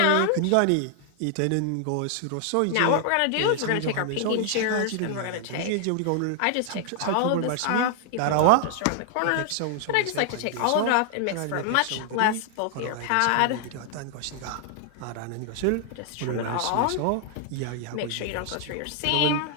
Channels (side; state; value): both; different; correlation 0.00